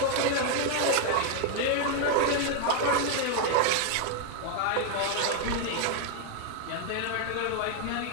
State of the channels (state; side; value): different; both; correlation 0.01